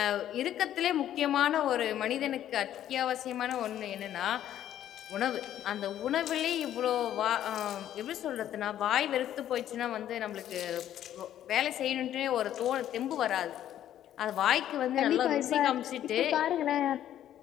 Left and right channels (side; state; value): right; quieter; 11.4 dB